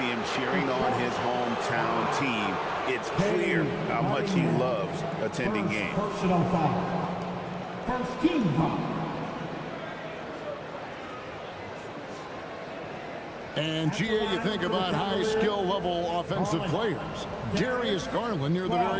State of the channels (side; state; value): both; identical; correlation 1.00